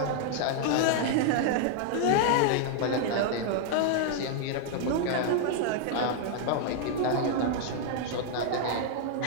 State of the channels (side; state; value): both; different; correlation 0.00